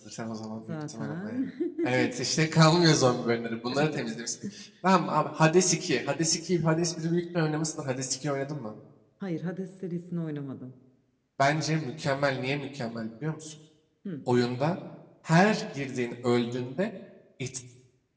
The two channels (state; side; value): identical; both; correlation 1.00